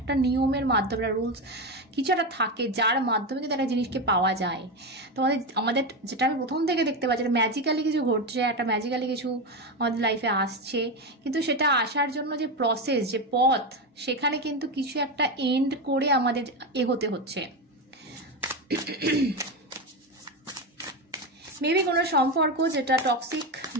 নিয়মের মাধ্যমে, রুলস কিছু একটা থাকে যার মাধ্যমে কিন্তু একটা জিনিসকে পাওয়া যায়। তো আমাদের যেটা আমি প্রথম থেকে দেখতে পাচ্ছি, ম্যাজিক্যালি কিছু ঘটছে, একটা ম্যাজিক্যালি কিছু আমাদের লাইফে আসছে, কিন্তু সেটা আসার জন্য যে প্রসেস, যে পথ, সেখানে কিন্তু কিছু একটা এন্ড করে আমাদের এগোতে হচ্ছে। মেবি কোনো সম্পর্ক যেটা টক্সিক,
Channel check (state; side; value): normal; both; correlation 0.15